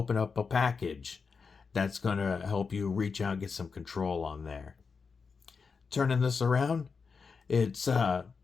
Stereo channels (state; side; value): quieter; right; 5.2 dB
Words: up a package, that's going to help you reach out and get some control on there. Turning this around, it's not